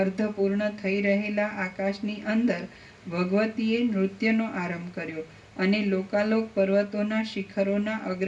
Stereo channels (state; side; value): identical; both; correlation 1.00